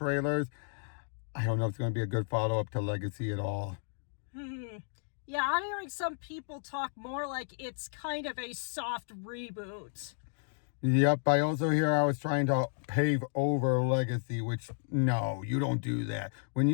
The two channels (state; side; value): silent; right; digital silence